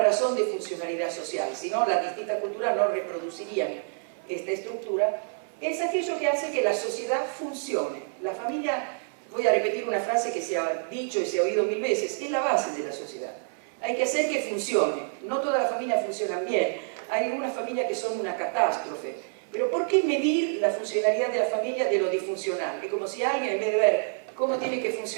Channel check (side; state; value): left; silent; 56 dB below the other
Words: razón de funcionalidad social, si no, las distintas culturas no reproducirían esta estructura. Es aquello que hace que la sociedad funcione. La familia, voy a repetir una frase que se ha dicho y se ha oído mil veces, es la base de la sociedad. Hay que hacer que funcione. No todas las familias funcionan bien. Hay algunas familias que son una catástrofe. Pero ¿por qué medir la funcionalidad de la familia de lo disfuncional? Es como si alguien, en vez de ver cómo tiene que